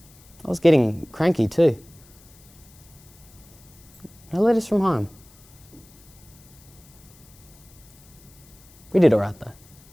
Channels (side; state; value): left; noise; hiss, 25 dB below the sound